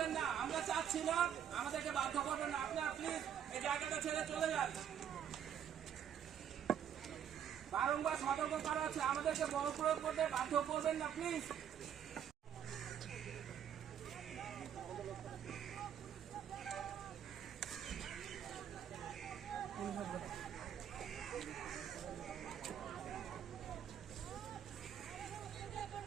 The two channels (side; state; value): left; quieter; 9.1 dB